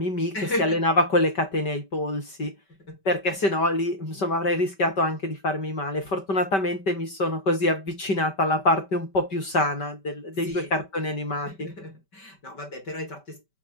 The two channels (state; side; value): late; right; 5.2 ms